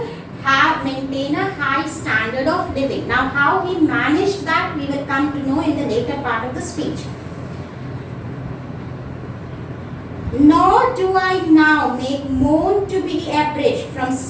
maintain a high standard of living. Now how he managed that we will come to know in the later part of the speech. Nor do I now make moan to be abridged from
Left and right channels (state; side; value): identical; both; correlation 1.00